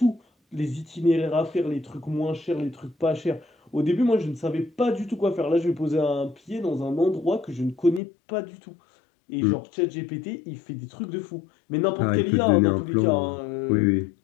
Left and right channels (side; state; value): right; drops out; at 8.0 s